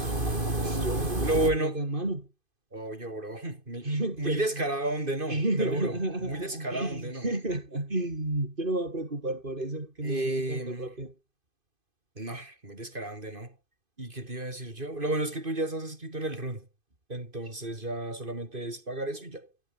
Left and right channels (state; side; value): late; left; 2.5 ms